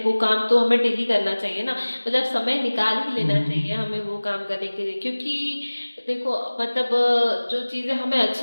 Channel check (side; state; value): both; inverted; correlation -1.00